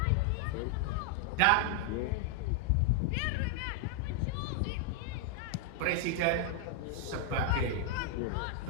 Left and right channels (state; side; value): different; both; correlation 0.00